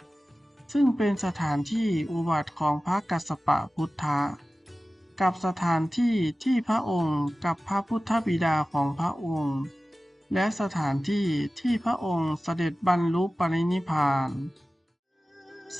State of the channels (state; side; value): normal; both; correlation 0.96